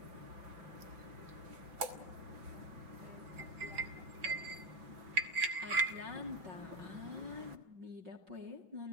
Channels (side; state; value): left; late; 5.4 ms